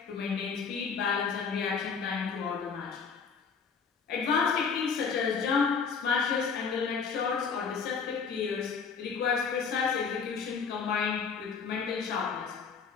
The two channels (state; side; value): quieter; right; 5.8 dB